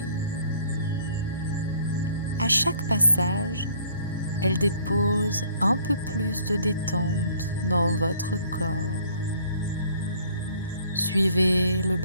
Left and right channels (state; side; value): inverted; both; correlation -0.58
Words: À chaque passage, elle dépose un peu plus de détente dans votre corps. Suivez le